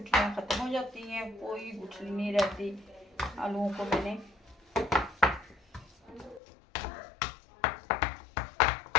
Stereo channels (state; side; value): drops out; right; at 6.4 s